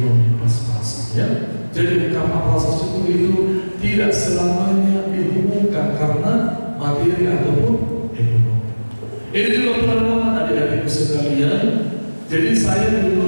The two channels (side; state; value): both; inverted; correlation -1.00